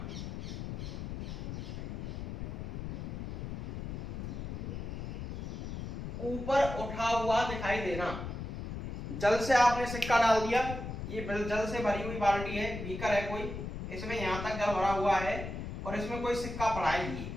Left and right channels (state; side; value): noise; left; rumble, 6 dB below the sound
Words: ऊपर उठा हुआ दिखाई देना। जल से आपने सिक्का डाल दिया, ये जल से भरी हुई बाल्टी है, बीकर है कोई, इसमें यहां तक जल भरा हुआ है और इसमें कोई सिक्का पड़ा है।